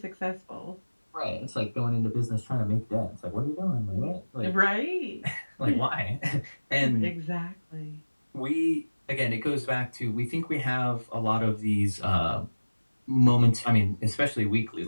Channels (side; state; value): both; inverted; correlation -1.00